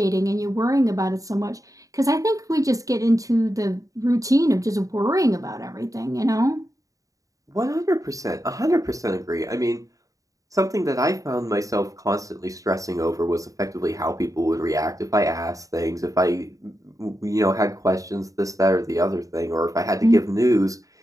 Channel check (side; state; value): left; late; 0.16 ms